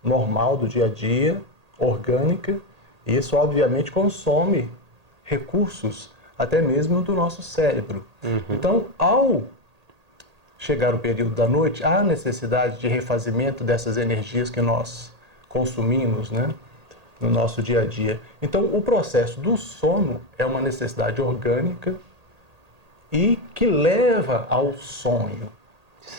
normal do dia a dia, orgânica, e isso obviamente consome recursos até mesmo do nosso cérebro. Então, ao chegar o período da noite, há necessidade de refazimento dessas energias que nós consumimos, né, no nosso dia a dia. Então, o processo do sono é uma necessidade orgânica e que leva ao sonho,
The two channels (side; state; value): left; late; 1.8 ms